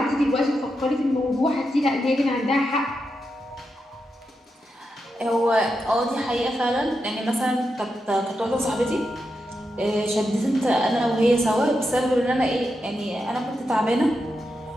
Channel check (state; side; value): normal; both; correlation 0.86